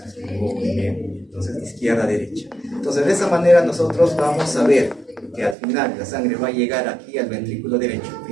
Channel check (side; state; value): left; drops out; at 5.6 s